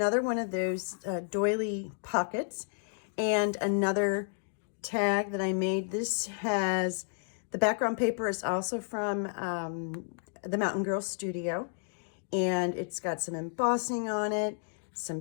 one of those doily pockets and another tag that I made. This has, the background paper is also from the Mountain Girl Studio, and it's got some embossing on it,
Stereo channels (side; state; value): right; silent; digital silence